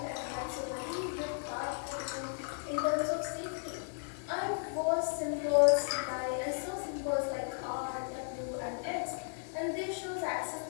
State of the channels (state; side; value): silent; right; digital silence